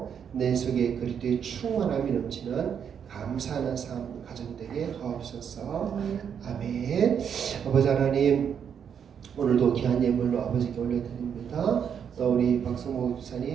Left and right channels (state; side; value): quieter; left; 7.8 dB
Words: 내 속에 그리스도의 충만함이 넘치는 감사하는 삶 가정되게 하옵소서. 아멘. 아버지 하나님 오늘도 귀한 예물로 아버지께 올려드립니다. 또 우리 박성모